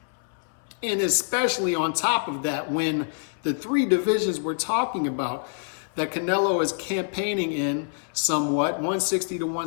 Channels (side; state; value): right; silent; 59 dB below the other